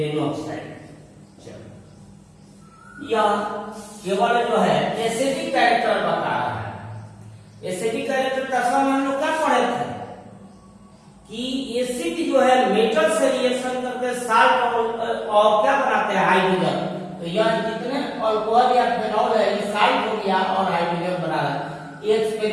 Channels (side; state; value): both; identical; correlation 1.00